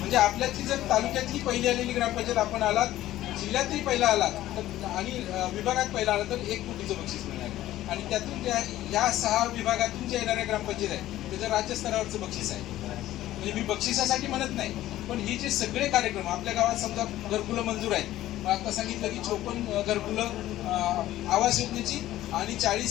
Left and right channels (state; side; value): quieter; right; 14.4 dB